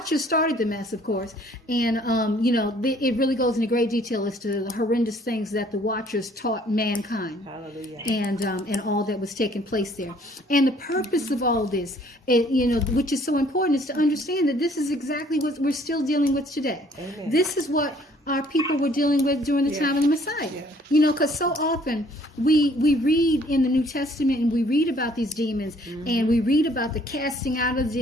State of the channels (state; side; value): normal; both; correlation 0.60